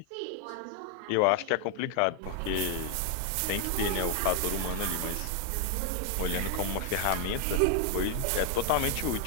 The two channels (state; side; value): different; both; correlation 0.00